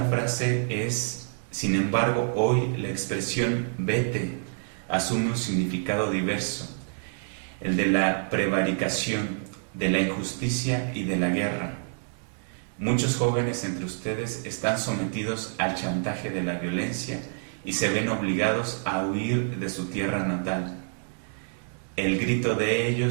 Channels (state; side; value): silent; left; digital silence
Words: frase es: sin embargo, hoy la expresión vete asume un significado diverso, el de la prevaricación, de la injusticia y de la guerra. Muchos jóvenes entre ustedes están sometidos al chantaje de la violencia y se ven obligados a huir de su tierra natal. El grito de